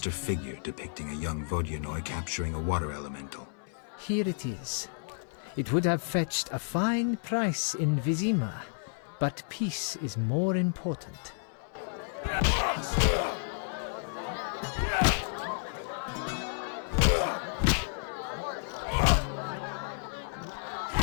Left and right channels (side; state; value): right; silent; 57 dB below the other